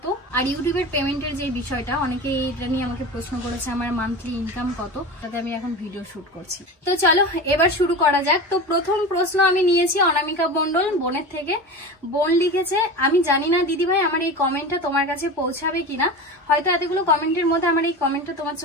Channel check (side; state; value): both; normal; correlation 0.29